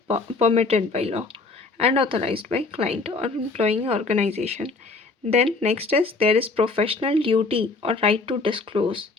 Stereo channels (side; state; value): right; quieter; 3.8 dB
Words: permitted by law and authorised by client और employing organisation. Then next is there is professional duty और right to disclose.